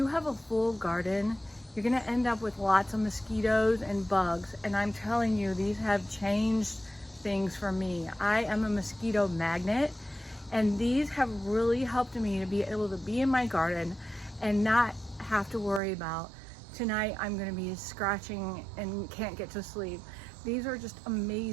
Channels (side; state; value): left; drops out; at 15.8 s